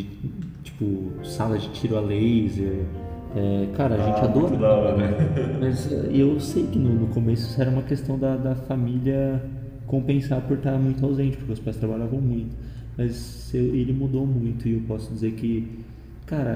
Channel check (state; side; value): identical; both; correlation 1.00